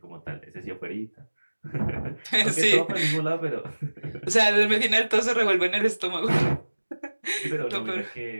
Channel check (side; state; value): both; inverted; correlation -1.00